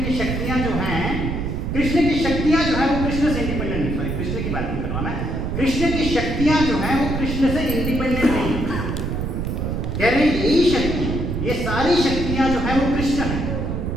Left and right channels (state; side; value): noise; right; rumble, 2 dB below the sound